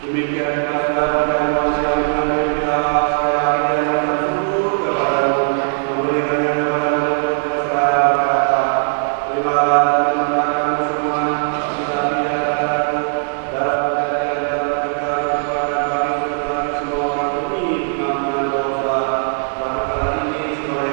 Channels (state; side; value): silent; left; digital silence